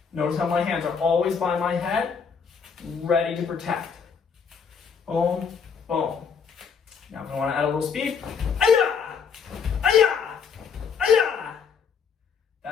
Notice how my hands are always by my head, ready to protect. Boom. Boom. Now if I want to add a little speed, aya! Aya! Aya!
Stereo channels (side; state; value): right; quieter; 6.2 dB